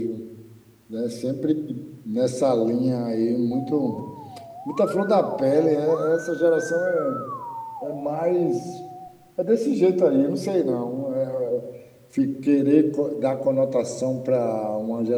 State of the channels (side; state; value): both; identical; correlation 1.00